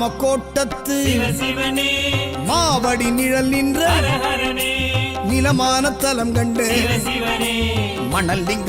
சிவ சிவனே மாவடி நிழல் நின்ற ஹரஹரனே நிலமான தலம் கண்டு சிவ சிவனே மணல்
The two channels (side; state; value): both; identical; correlation 1.00